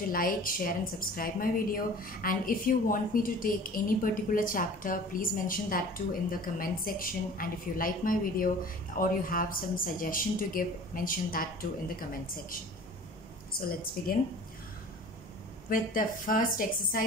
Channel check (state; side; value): normal; both; correlation 0.44